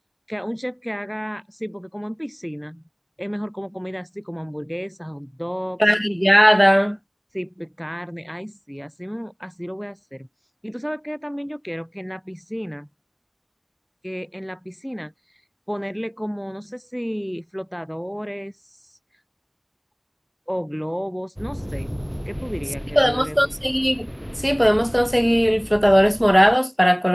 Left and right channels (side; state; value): both; identical; correlation 1.00